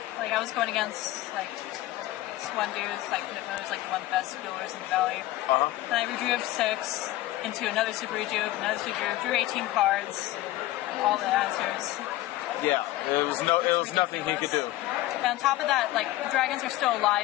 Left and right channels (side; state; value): right; quieter; 16.3 dB